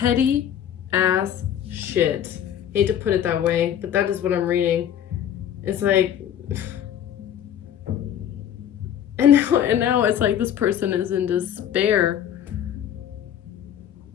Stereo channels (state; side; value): quieter; right; 9.9 dB